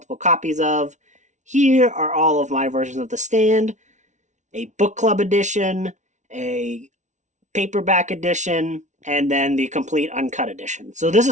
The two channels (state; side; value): late; left; 0.35 ms